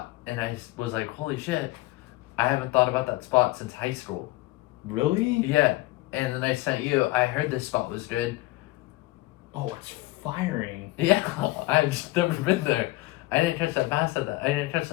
And I was like, holy shit. I haven't thought about that spot since high school. Really? Yeah. And then I sent you. I heard this spot was good. Oh, it's firing. Yeah, I've just never been there. I didn't catch that bass at that. I didn't catch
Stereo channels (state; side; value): quieter; right; 19.6 dB